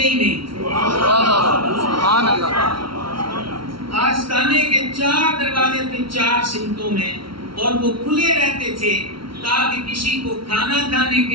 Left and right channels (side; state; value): left; late; 0.74 ms